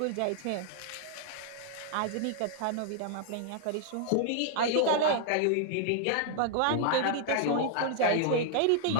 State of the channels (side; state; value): both; different; correlation -0.01